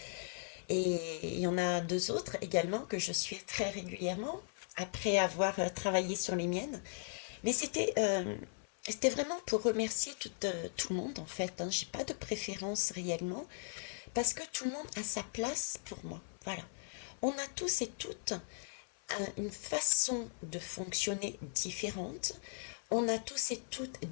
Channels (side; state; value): right; silent; 53 dB below the other